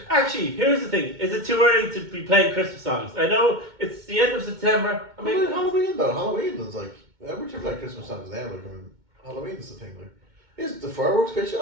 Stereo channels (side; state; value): left; late; 2.1 ms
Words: actually? Here's the thing: is it too early to be playing Christmas songs? I know it's the end of September. I mean, Halloween though. Halloween is like, we're trying to play Christmas songs now. Like, I mean, Halloween is the thing. Like, is the fireworks pitch